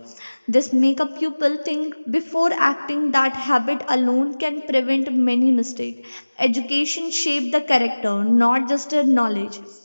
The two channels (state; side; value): inverted; both; correlation -1.00